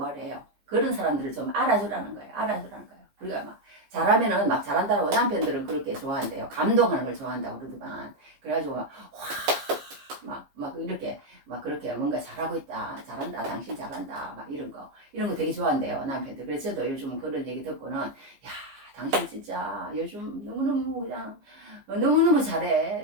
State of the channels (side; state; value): left; late; 15 ms